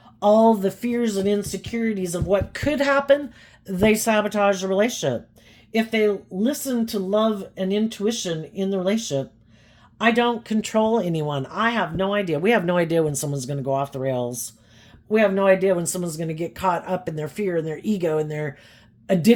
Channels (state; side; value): identical; both; correlation 1.00